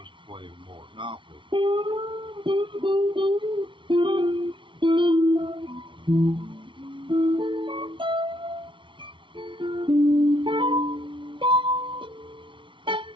to playing more Monopoly.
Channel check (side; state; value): left; late; 0.24 ms